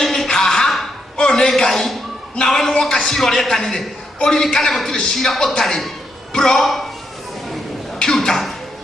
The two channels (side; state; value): both; normal; correlation 0.79